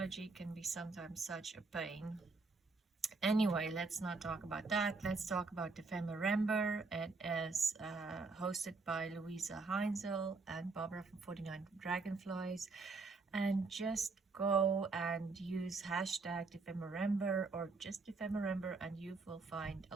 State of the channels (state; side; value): quieter; left; 4.0 dB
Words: can be sometimes such a pain. Anyway, let's not talk about that. Let's talk about Dephemerember. It is hosted by Luise Heinzl and Barbara from 49 Dragonflies. And just go and use hashtag Dephemerember or just Dephemerember and you will find